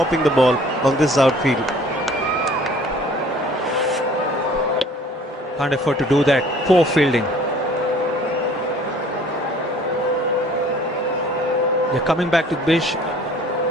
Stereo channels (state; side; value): normal; both; correlation 0.53